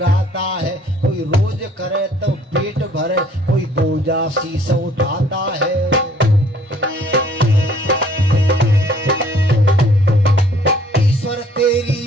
है। कोई रोज करे तो पेट भरे, कोई बोझा शीश उठाता है। ईश्वर तेरी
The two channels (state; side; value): normal; both; correlation 0.59